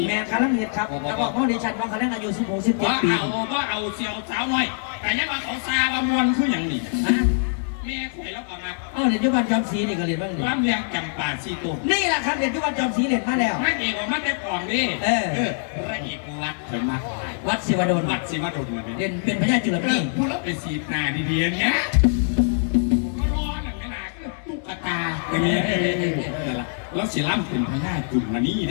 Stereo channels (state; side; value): silent; right; 63 dB below the other